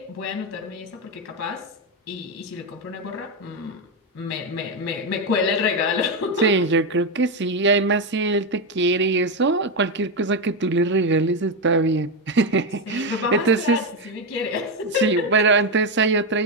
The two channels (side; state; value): both; normal; correlation 0.08